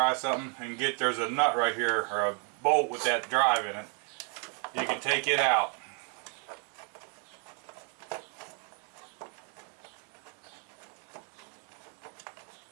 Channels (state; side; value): quieter; left; 36.8 dB